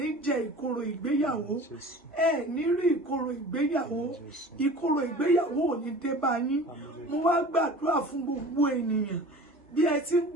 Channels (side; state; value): both; normal; correlation 0.41